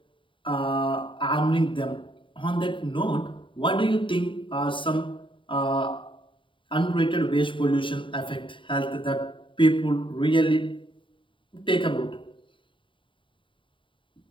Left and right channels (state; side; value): late; right; 0.25 ms